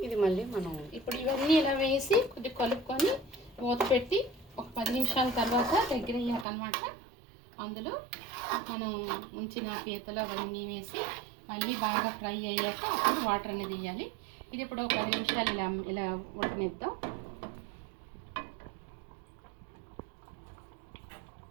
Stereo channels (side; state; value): left; drops out; at 6.5 s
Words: ఇది మళ్ళీ మనం ఇప్పుడు ఇవన్నీ ఇలా వేసి కొద్దిగా కలుపుకొని మూత పెట్టి ఒక 10 నిమిషాల తర్వాత దగ్గర అయ్యాకనమాట అందులో మనం ఉంచిన పీతలు అవన్నీ వేసి మళ్ళీ బాగా ఫ్రై అయ్యాక అప్పుడు వాటర్ అనేది వేయాలి. ఇది ఇప్పుడు ఒక 10 నిమిషాలు ఇలా ఉడకనిద్దాం.